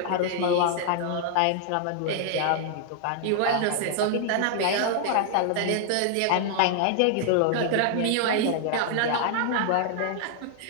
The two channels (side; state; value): both; different; correlation -0.01